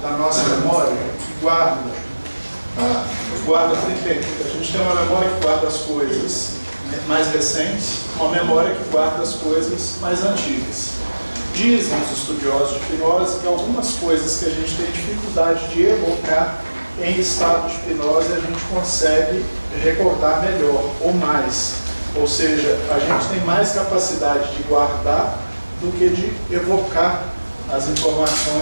da nossa memória, que guarda primeiro, a gente tem uma memória que guarda as coisas mais recentes, uma memória que guarda as coisas mais antigas. Dizem os estudiosos de hipnose que algumas coisas que a gente tem dificuldade de evocar em estado de hipnose a gente consegue recordar melhor ou mais. Ou seja, a gente tem mais capacidade de guardar do que de evocar as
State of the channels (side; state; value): both; inverted; correlation -1.00